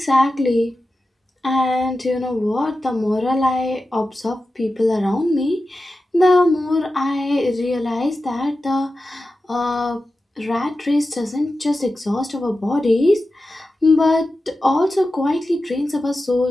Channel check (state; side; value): normal; both; correlation 0.93